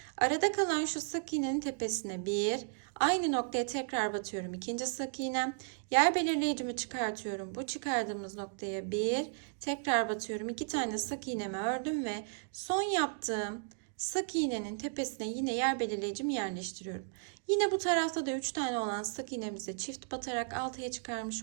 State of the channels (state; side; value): silent; left; digital silence